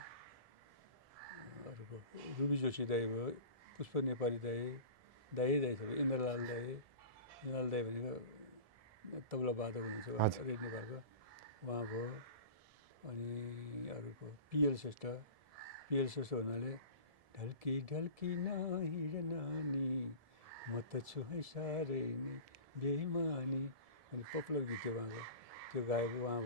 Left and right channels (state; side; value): late; left; 1.7 ms